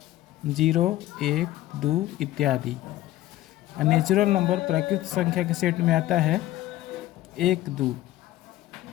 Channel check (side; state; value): right; quieter; 15.1 dB